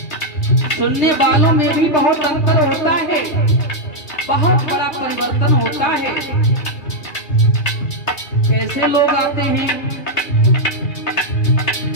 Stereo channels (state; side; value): late; right; 2.6 ms